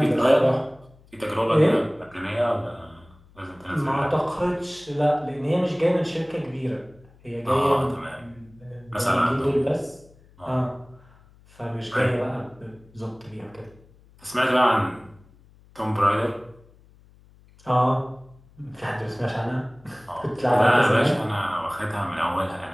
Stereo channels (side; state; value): left; noise; hum, 27 dB below the sound